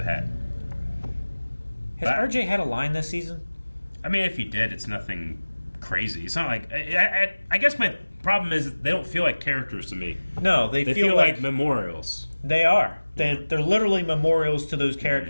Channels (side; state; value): both; inverted; correlation -1.00